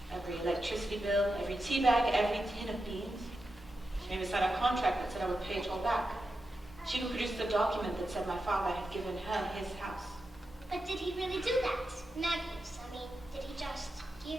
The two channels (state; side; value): normal; both; correlation 0.89